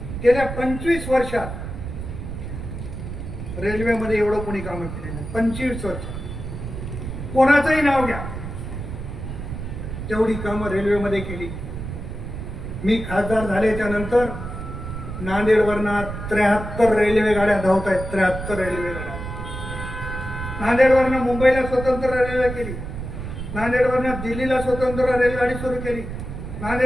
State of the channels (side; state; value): right; noise; rumble, 7 dB below the sound